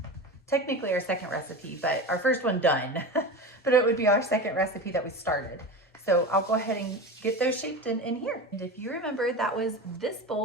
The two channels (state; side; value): normal; both; correlation 0.27